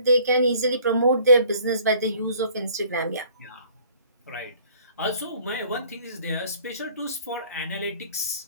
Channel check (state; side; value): inverted; both; correlation -0.55